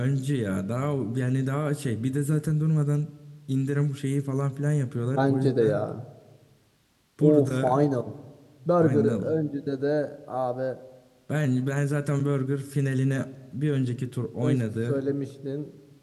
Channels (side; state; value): both; identical; correlation 1.00